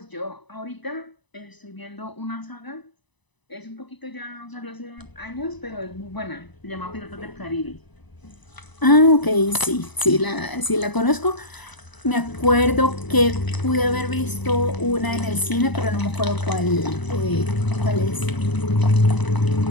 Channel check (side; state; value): right; late; 1.0 ms